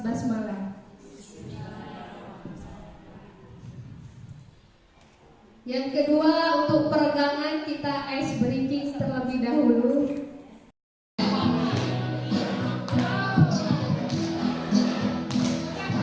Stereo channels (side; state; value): both; identical; correlation 1.00